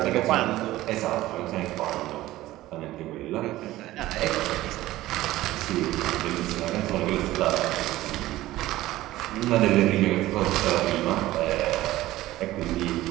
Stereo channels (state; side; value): quieter; left; 16.2 dB